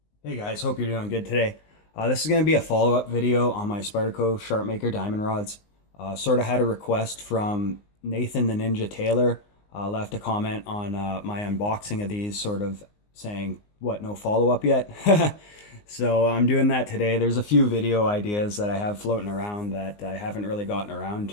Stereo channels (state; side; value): late; right; 19 ms